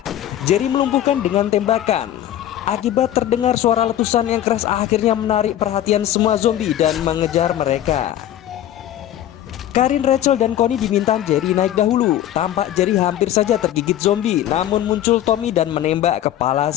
Jerry melumpuhkan dengan tembakan. Akibat terdengar suara letusan yang keras akhirnya menarik perhatian semua zombie dan mengejar mereka. Karin, Rachel, dan Connie diminta Jerry naik dahulu. Tampak Jerry hampir saja tergigit zombie, namun muncul Tommy dan menembak kepala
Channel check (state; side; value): quieter; right; 12.1 dB